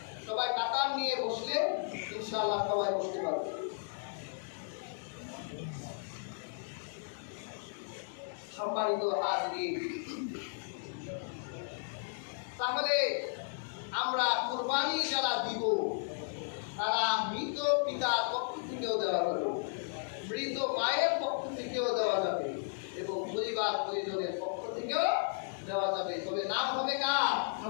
সবাই কাতার নিয়ে বসলে ইনশাআল্লাহ সবাই বসতে পারবে। সম্মানিত হাজিরিন, তাহলে আমরা কুরবানি যারা দিব তারা মৃত পিতার পক্ষ থেকেও দেওয়া যাবে, মৃত মায়ের পক্ষ থেকেও দেওয়া যাবে এবং পরিবার পরিজনের পক্ষ থেকেও দেওয়া যাবে। তবে নাম হবে কার?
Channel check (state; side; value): silent; right; digital silence